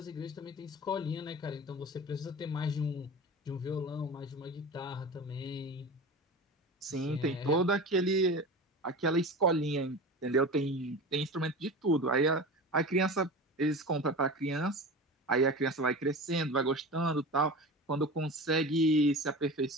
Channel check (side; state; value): both; normal; correlation 0.31